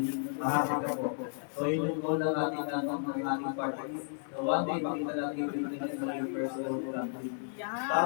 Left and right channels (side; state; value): right; silent; 56 dB below the other